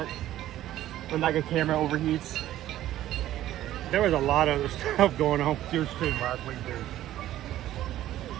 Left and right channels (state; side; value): quieter; left; 13.5 dB